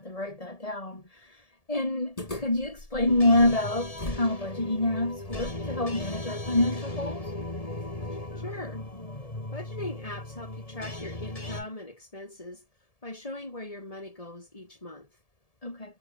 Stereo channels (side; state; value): right; late; 1.7 ms